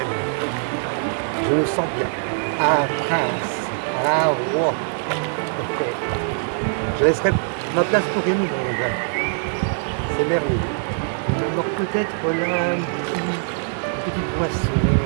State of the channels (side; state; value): left; silent; digital silence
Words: Je me sens bien. Un prince, un roi. Ok. Je laisserai ma place pour rien au monde. C'est merveilleux. Il me manque peut-être là une petite boisson